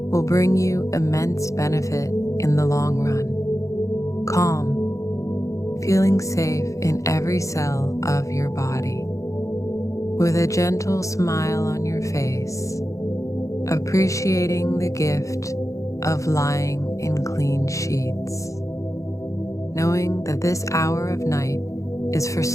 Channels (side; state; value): right; late; 0.15 ms